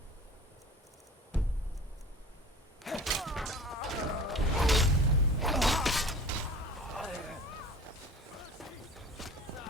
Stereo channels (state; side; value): normal; both; correlation 0.40